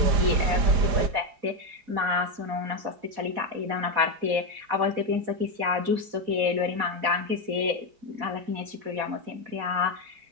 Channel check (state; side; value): late; left; 4.1 ms